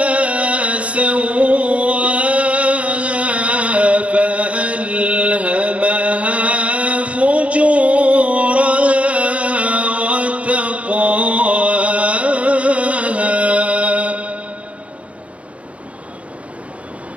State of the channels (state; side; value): late; left; 0.064 ms